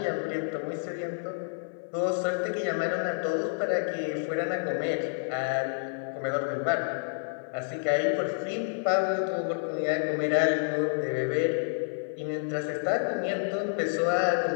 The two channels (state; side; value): silent; right; 58 dB below the other